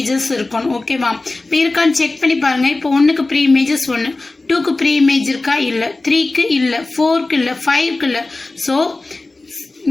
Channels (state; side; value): quieter; right; 3.2 dB